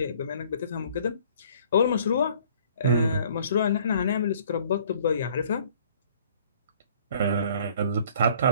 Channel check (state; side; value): inverted; both; correlation -0.56